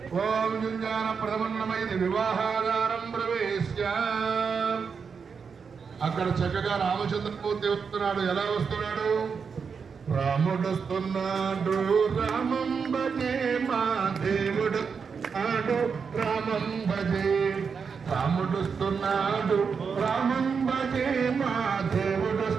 ఓం యుంజాన ప్రథమన్నమైది వివాహాగారం ప్రవేశ్య. అక్కడ చక్కగా రామచంద్రమూర్తి వస్తున్నాడు. ఎలా వస్తున్నాడు? రాముడు వస్తున్నాడు, రామం భజే మా దేవుడు ఆడు, రామం భజే. రాముడు వస్తున్నాడు, రామం భజే మా దేవుడు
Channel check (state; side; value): quieter; left; 5.9 dB